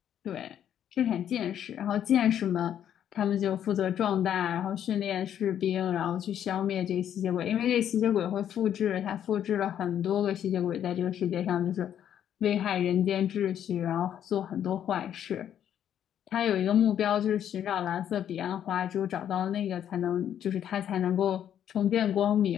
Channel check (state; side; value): quieter; right; 9.9 dB